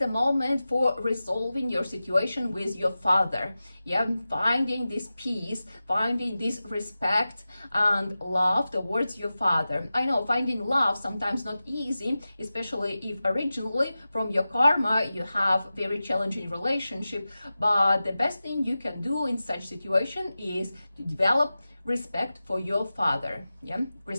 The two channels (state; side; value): inverted; both; correlation -0.95